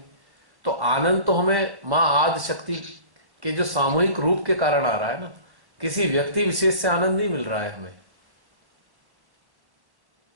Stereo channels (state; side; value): late; left; 1.1 ms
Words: तो आनंद तो हमें माँ आदि शक्ति के जो सामूहिक रूप के कारण आ रहा है ना, किसी व्यक्ति विशेष से आनंद नहीं मिल रहा है हमें।